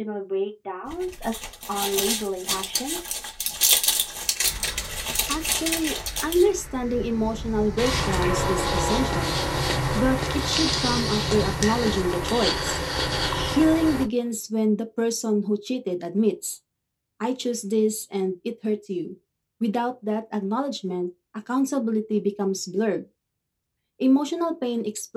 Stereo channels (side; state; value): both; identical; correlation 1.00